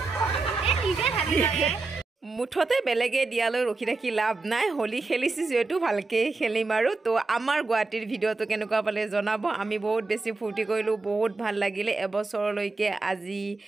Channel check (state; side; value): quieter; left; 3.6 dB